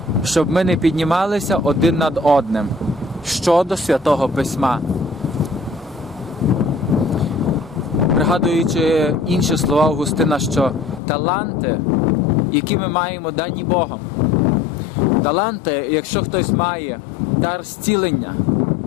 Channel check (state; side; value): drops out; right; at 11.0 s